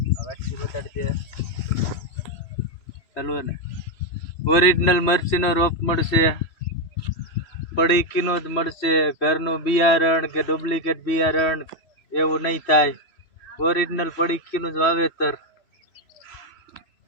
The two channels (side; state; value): right; late; 3.0 ms